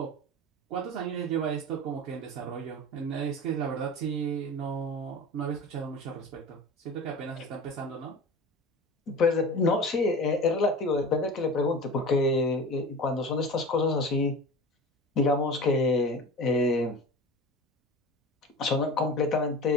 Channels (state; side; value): normal; both; correlation 0.34